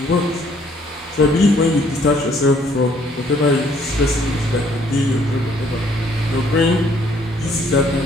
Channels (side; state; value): both; normal; correlation 0.64